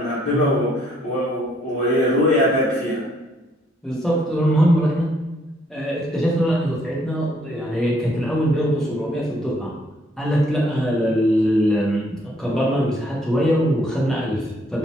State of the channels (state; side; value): normal; both; correlation 0.67